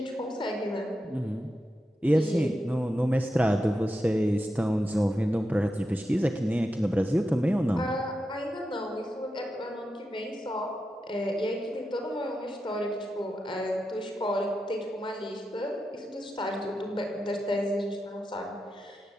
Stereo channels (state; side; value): normal; both; correlation 0.89